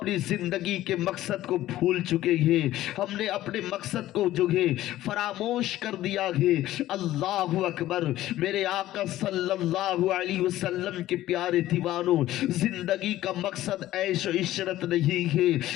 زندگی کے مقصد کو بھول چکے ہیں، ہم نے اپنے مقصد کو جو ہے فراموش کر دیا ہے۔ اللہ اکبر! میرے آقا صلی اللہ علیہ وسلم کے پیارے دیوانوں، زندگی کا مقصد عیش و عشرت نہیں ہے،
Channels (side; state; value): right; quieter; 14.6 dB